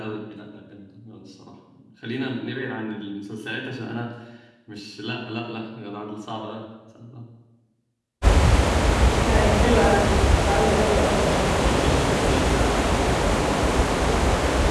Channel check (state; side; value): identical; both; correlation 1.00